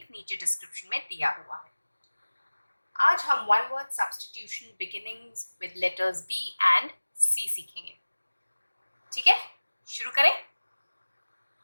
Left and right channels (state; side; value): inverted; both; correlation -1.00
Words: नीचे डिस्क्रिप्शन में दिया हुआ है। आज हम one word substitution beginnings with letters B and C सीखेंगे। ठीक है, शुरू करें।